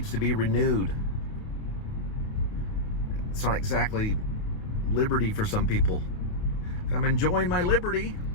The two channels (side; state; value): right; late; 29 ms